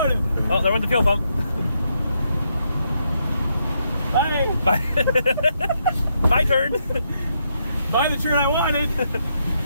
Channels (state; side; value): inverted; both; correlation -0.78